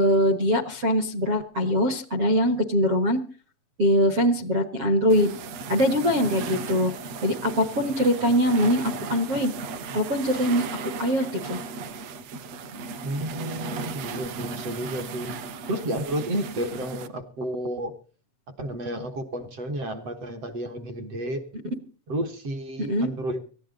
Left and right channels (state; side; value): late; left; 8.2 ms